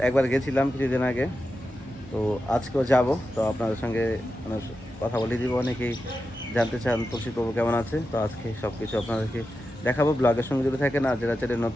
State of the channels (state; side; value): normal; both; correlation 0.90